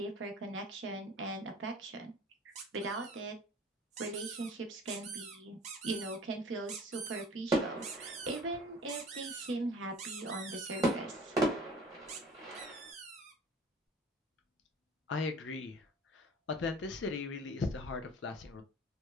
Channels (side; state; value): both; normal; correlation 0.46